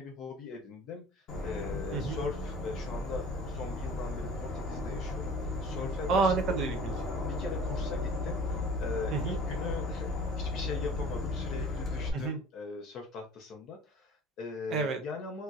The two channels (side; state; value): both; normal; correlation 0.45